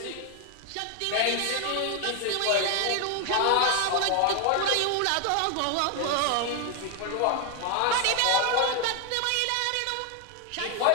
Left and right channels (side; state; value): both; different; correlation 0.01